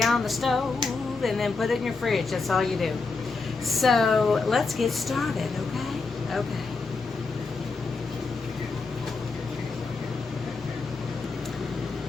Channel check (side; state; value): right; quieter; 4.1 dB